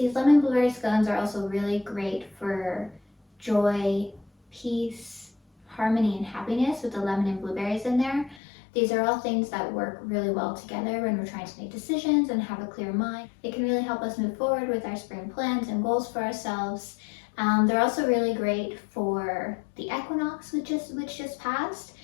lemon blueberry scones are also really great for joy, peace, harmony, and happiness with the lemon and blueberries in there. These are all things that work really well together when we're trying to make decisions and have a clear mind. It can really help us move forward with our spring plans and goals for ourselves. They're also really great for the equinox, which just passed,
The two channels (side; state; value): right; drops out; at 8.4 s